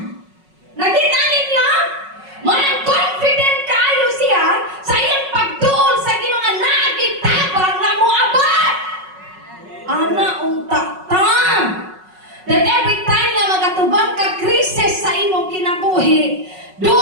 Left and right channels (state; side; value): late; left; 5.4 ms